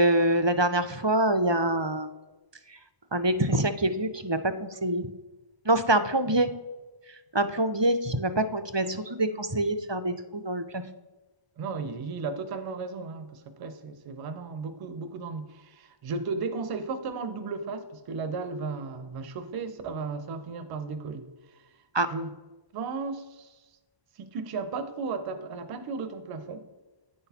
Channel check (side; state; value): left; late; 1.2 ms